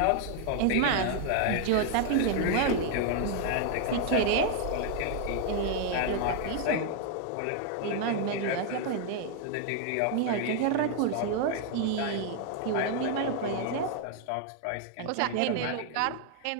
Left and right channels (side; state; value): both; different; correlation 0.00